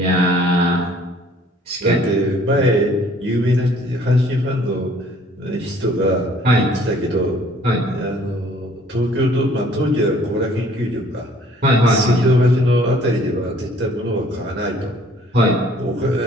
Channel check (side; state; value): both; normal; correlation 0.57